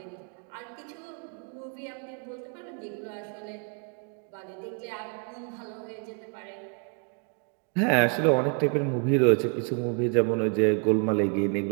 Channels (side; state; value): left; quieter; 38.7 dB